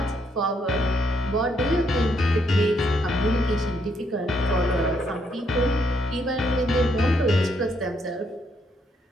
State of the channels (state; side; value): normal; both; correlation 0.74